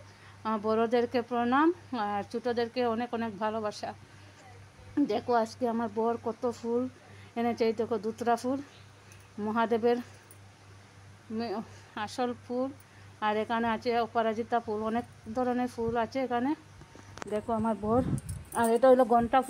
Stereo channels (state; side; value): identical; both; correlation 1.00